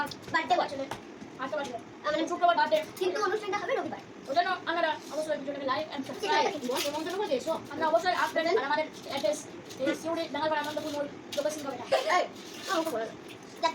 বার্থডে বছরে আজকে বাড়ি মানে শুক্রবার বার্থডে কিন্তু অনুষ্ঠানটা হবে রবিবার। ওই জন্য আপনারা অবশ্যই ভিডিওটাকে লাইক এন্ড সাবস্ক্রাইব নিমন্ত্রণ করে দিয়েছো আমরা অবশ্যই আসবেন আর আমাদের অ্যাড্রেস এই সিউড়ি ডাঙ্গাপাড়া আনন্দপুর লোকেশন কবে এই আমাকে বলো দেখো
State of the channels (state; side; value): identical; both; correlation 1.00